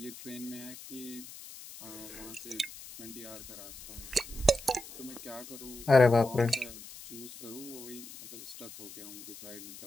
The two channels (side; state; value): left; noise; hiss, 14 dB below the sound